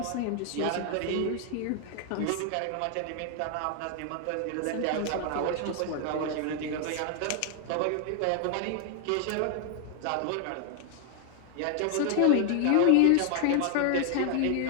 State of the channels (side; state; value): both; different; correlation 0.00